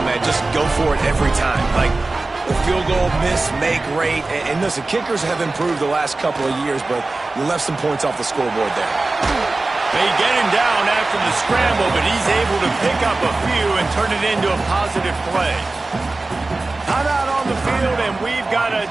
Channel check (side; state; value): left; quieter; 3.3 dB